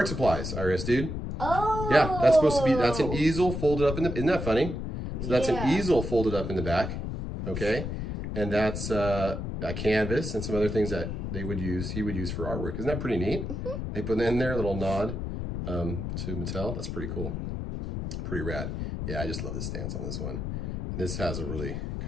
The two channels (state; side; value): noise; left; rumble, 4 dB below the sound